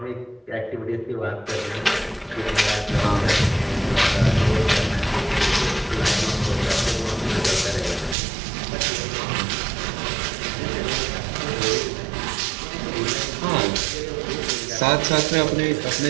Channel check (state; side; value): drops out; left; at 8.2 s